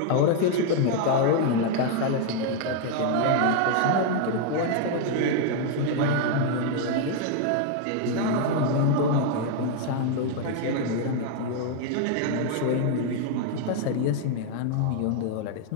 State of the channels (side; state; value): both; different; correlation 0.00